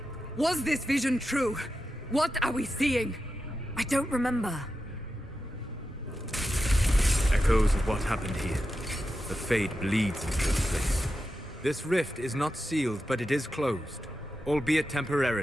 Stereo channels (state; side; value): normal; both; correlation 0.90